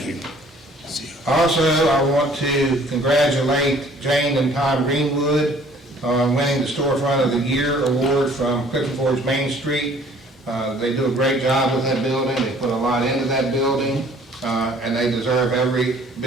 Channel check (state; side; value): normal; both; correlation 0.55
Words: you. Also, I want to congratulate Jane and Tom Greenwood on winning the Storefront of the Year award from Clifton Forge Main Street. They do a great job with that building. They put a lot into that building, and they deserve every